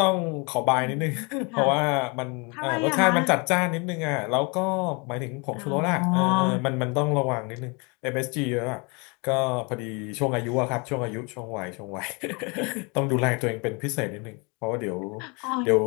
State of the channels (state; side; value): quieter; right; 30.6 dB